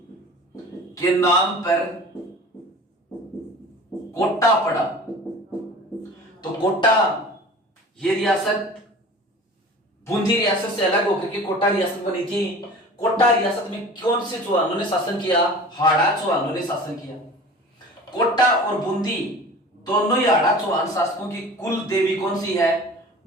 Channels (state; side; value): normal; both; correlation 0.41